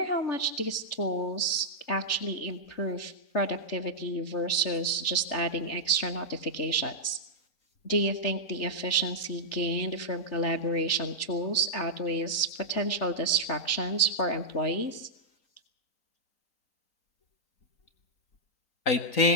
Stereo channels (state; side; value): late; right; 3.4 ms